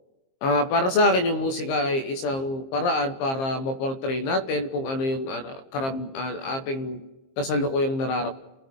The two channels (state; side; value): late; right; 22 ms